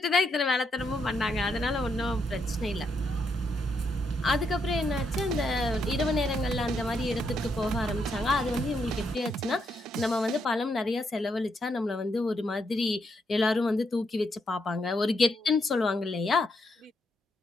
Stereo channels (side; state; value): both; normal; correlation 0.78